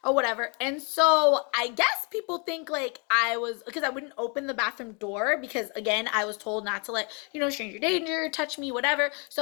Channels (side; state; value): right; quieter; 34.7 dB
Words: or whatever. And so I guess people think like I was, because I wouldn't open the bathroom door because again, I was told not to let, stranger danger, touch me, whatever.